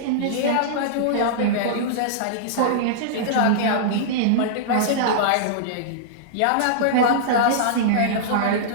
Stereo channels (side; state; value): both; different; correlation -0.02